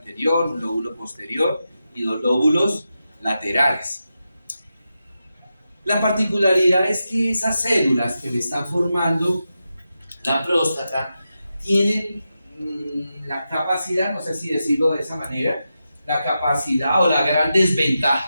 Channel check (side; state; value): both; inverted; correlation -0.89